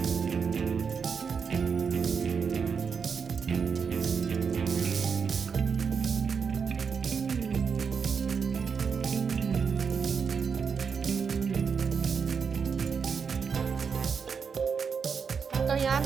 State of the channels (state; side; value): quieter; left; 6.0 dB